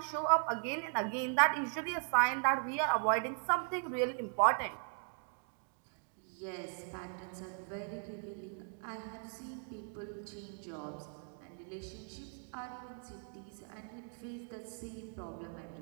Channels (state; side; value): silent; left; 52 dB below the other